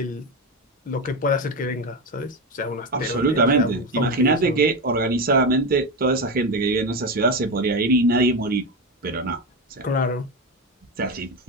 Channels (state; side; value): normal; both; correlation 0.15